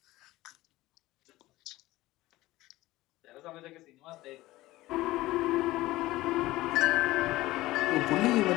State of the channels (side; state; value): right; quieter; 17.8 dB